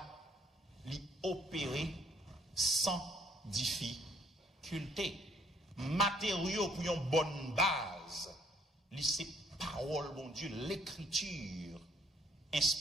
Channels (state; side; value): normal; both; correlation 0.65